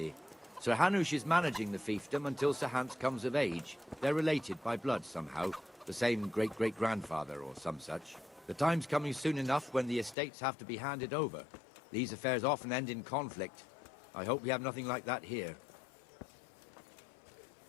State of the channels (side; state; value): right; drops out; at 10.2 s